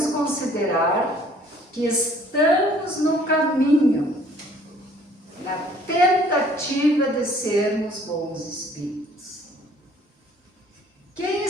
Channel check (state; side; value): normal; both; correlation 0.57